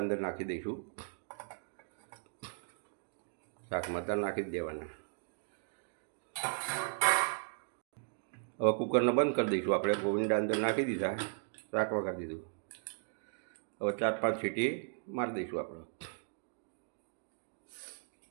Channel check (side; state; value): left; silent; digital silence